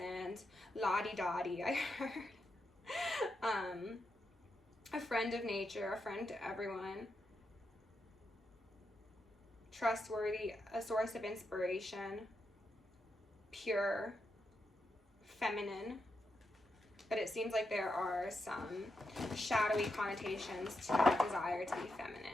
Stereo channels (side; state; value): both; normal; correlation 0.85